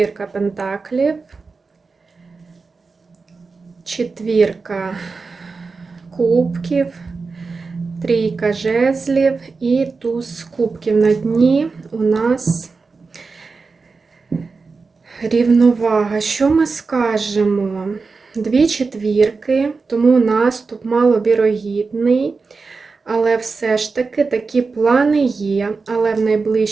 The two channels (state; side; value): quieter; left; 4.4 dB